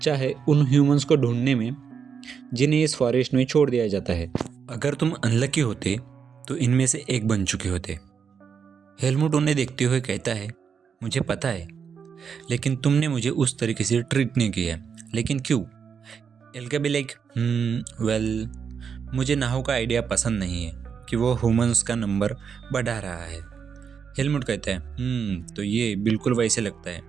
है उन ह्यूमंस को ढूंढने में जिन्हें इस फॉरेस्ट में छोड़ दिया जाता है। अगर तुम अनलकी होते तो इनमें से एक बन चुके होते। हेलमुट उन्हें देखते हुए कहता है, मुझे पता है, लेकिन तुमने मुझे उस तरीके से ट्रीट नहीं किया, लेकिन क्यों? एल्गा भी लाइक, वेल, मुझे नाहो का आइडिया पसंद नहीं है कि वो ह्यूमंस का नंबर बढ़ा रहा है। हेलमुट कहता है, तो ये बिल्कुल वैसे लगता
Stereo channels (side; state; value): left; quieter; 6.7 dB